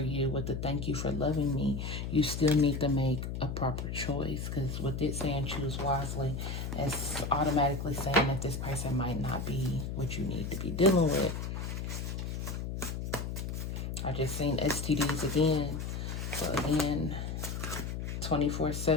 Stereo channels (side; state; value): left; noise; hum, 4 dB below the sound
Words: with the thank you for loving me, you still need to make a proper choice, because with it saying choose wisely, it's automatically saying that this person might not be what you need to be dealing with. I just seen STDs again. So again,